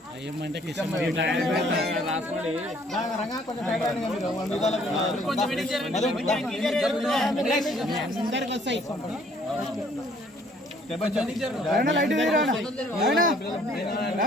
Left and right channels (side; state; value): both; normal; correlation 0.60